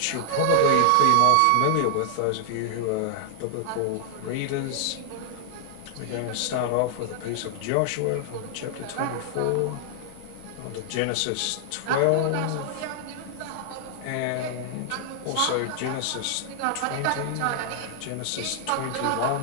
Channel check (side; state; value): both; different; correlation 0.00